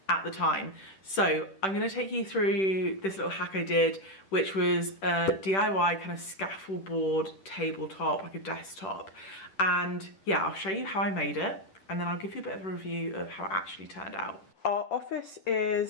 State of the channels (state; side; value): late; right; 10 ms